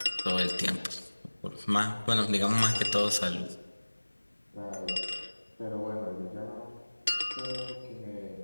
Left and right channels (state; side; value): inverted; both; correlation -1.00